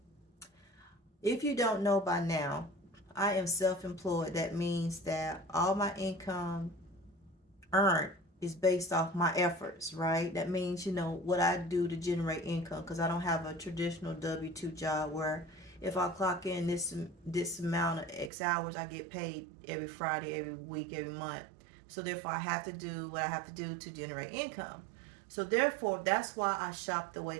if you don't know by now, I am self employed. That means that all my income earned is based off my efforts, right? That means, what I do to generate income because I don't have a traditional W 2 job where if I clock in this amount of X hours, I get paid every Friday, every week, every month. So therefore, I have to do what I have to do to generate income. So therefore, that's why I shop the way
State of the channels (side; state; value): left; drops out; at 18.3 s